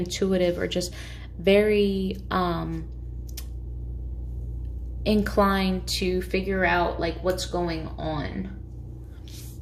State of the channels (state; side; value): identical; both; correlation 1.00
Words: or just very inclined to figure out like what's going on.